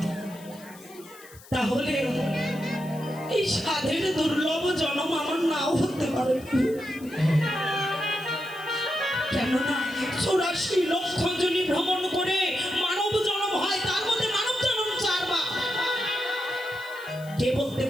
তাহলে এই সাধের দুর্লভ জন্ম আমার নাও হতে পারে কেননা 84 লক্ষ জনি ভ্রমণ করে মানব জন্ম হয় তার মধ্যে মানব জন্ম 4 বার কে বলতে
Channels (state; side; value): noise; left; hiss, 21 dB below the sound